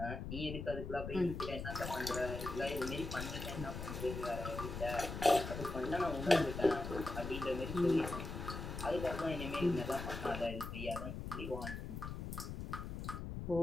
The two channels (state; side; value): noise; left; rumble, 6 dB below the sound